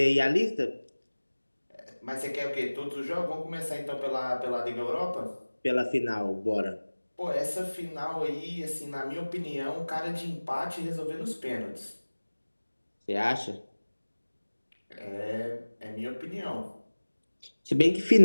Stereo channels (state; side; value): inverted; both; correlation -1.00